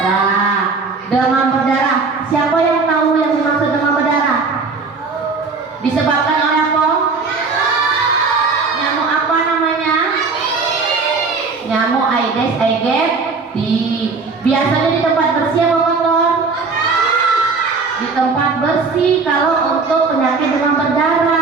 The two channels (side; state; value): left; quieter; 4.4 dB